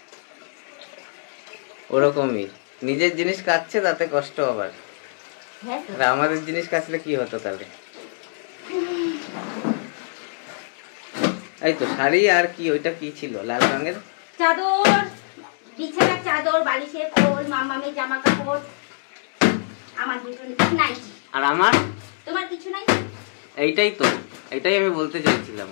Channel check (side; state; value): right; silent; digital silence